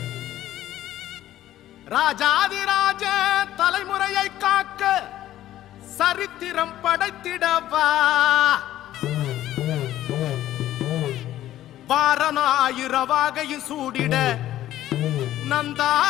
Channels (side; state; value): right; quieter; 13.3 dB